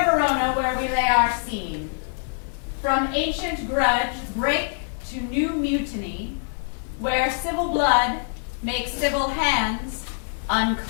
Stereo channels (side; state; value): right; silent; digital silence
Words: Verona where we lay our scene. From ancient grudge break to new mutiny, where civil blood makes civil hands